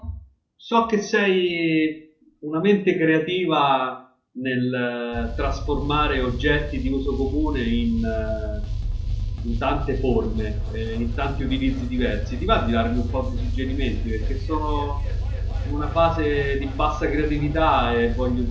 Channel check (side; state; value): both; identical; correlation 1.00